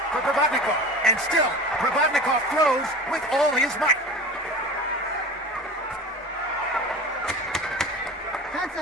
for Provodnikov. And still, Provodnikov throws with all his might. 10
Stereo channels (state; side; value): normal; both; correlation 0.34